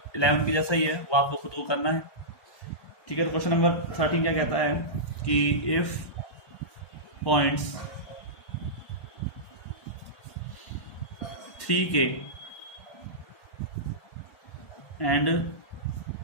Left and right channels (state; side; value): late; right; 1.1 ms